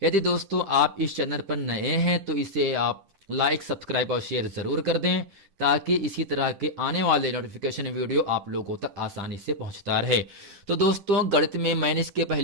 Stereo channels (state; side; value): late; left; 10 ms